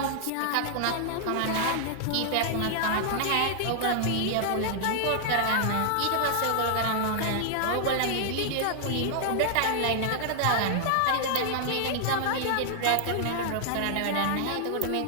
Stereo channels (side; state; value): both; different; correlation -0.01